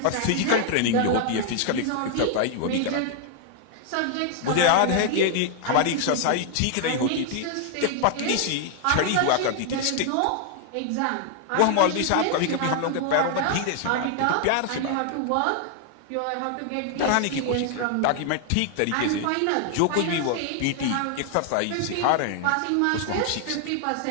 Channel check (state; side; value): different; both; correlation 0.00